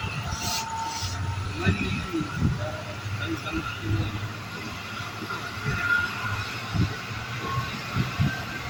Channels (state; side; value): identical; both; correlation 1.00